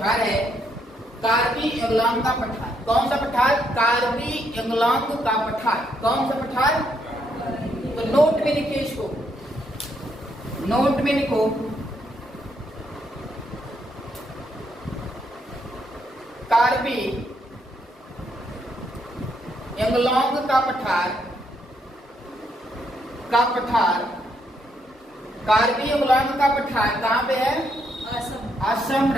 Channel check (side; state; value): both; normal; correlation 0.75